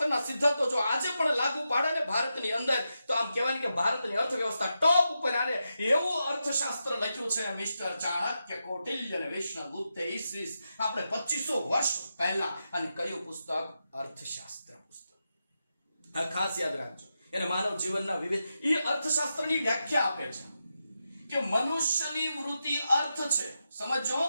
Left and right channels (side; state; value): both; inverted; correlation -0.88